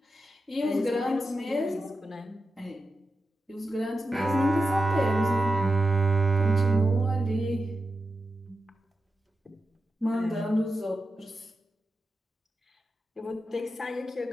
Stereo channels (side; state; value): both; normal; correlation 0.90